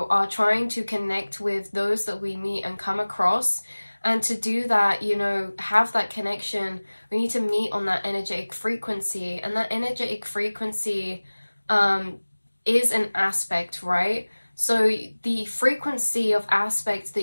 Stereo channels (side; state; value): both; inverted; correlation -1.00